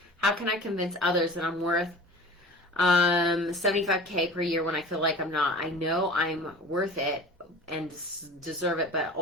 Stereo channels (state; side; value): normal; both; correlation 0.39